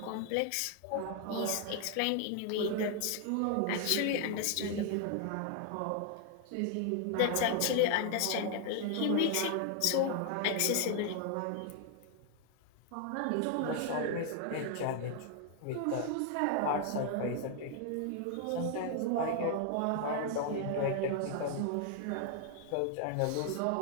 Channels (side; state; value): both; different; correlation 0.00